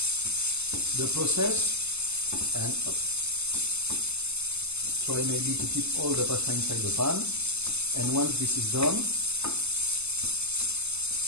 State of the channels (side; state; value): left; late; 0.80 ms